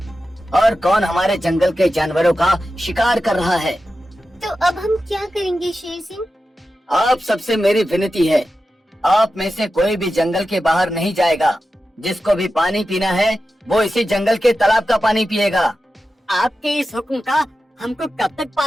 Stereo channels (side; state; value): both; normal; correlation 0.92